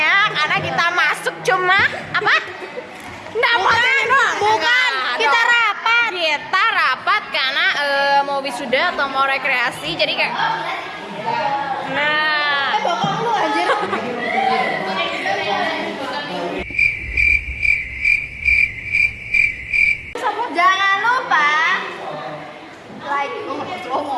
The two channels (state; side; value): identical; both; correlation 1.00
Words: karena kita masuk cuma apa? Nggak bukan. Kita rapat. Kita rapat karena mau wisuda atau mau rekreasi, jadi kayak. Nah. Bokong lu anjir. Jangan lupa like,